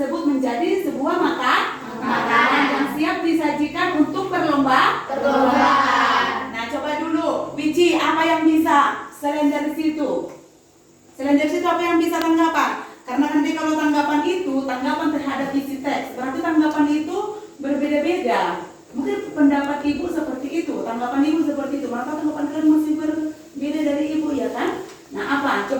menjadi sebuah makanan yang siap disajikan untuk perlombaan. Nah, coba dulu, Wici, apa yang bisa selain dari situ? Selain dari situ apa yang bisa tanggapan? Karena nanti kalau tanggapan itu, tanggapan terhadap isi teks, berarti tanggapan itu berbeda-beda. Mungkin pendapat ibu seperti itu, tanggapan ibu seperti itu, maka tanggapan kalian masih berbeda dari ibu, ya kan? Nah, apa?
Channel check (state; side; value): identical; both; correlation 1.00